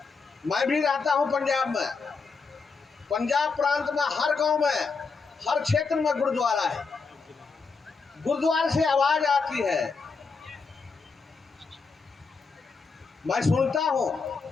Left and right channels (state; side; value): quieter; right; 4.7 dB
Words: मैं भी रहता हूँ पंजाब में। पंजाब प्रांत में हर गांव में, हर क्षेत्र में गुरुद्वारा है। गुरुद्वारे से आवाज आती है, मैं सुनता हूँ,